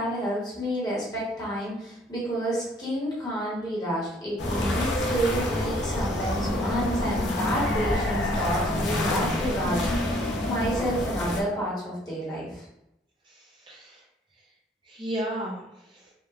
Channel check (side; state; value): both; normal; correlation 0.60